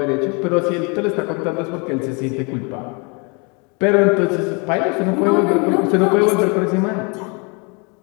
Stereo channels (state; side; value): quieter; right; 32.2 dB